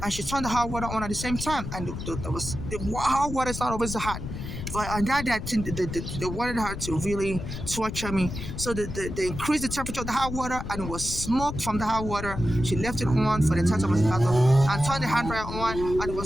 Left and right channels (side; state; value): left; noise; rumble, 7 dB below the sound